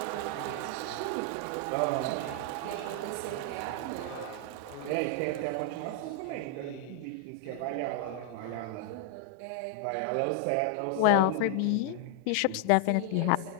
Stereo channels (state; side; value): different; both; correlation 0.00